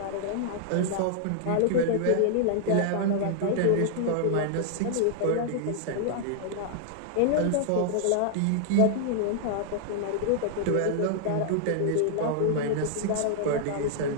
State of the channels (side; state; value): both; different; correlation -0.01